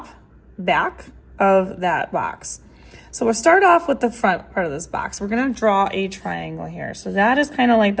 back of that box. So we'll start off with the front part of this box. We're going to draw a triangle here. So that is kind of like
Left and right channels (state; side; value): identical; both; correlation 1.00